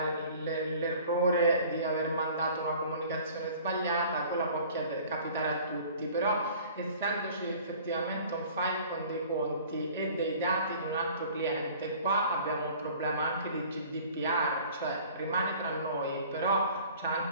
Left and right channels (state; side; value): inverted; both; correlation -0.49